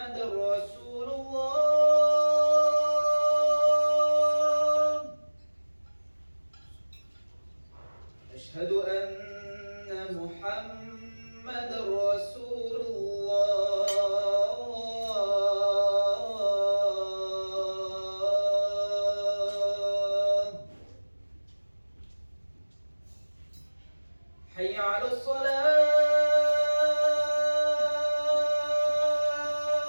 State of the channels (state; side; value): inverted; both; correlation -1.00